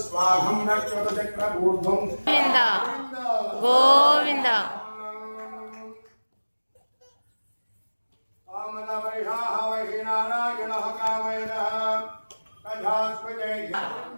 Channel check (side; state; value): both; inverted; correlation -1.00